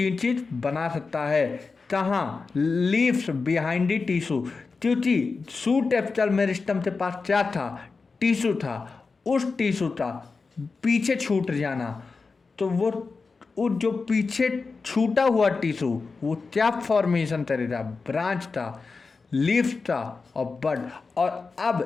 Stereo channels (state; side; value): quieter; right; 4.4 dB